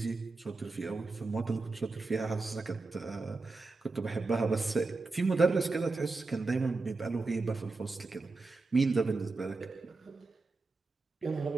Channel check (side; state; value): left; quieter; 3.7 dB